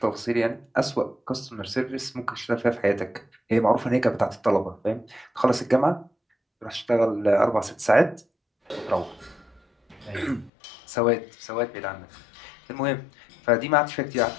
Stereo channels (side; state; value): right; drops out; at 10.5 s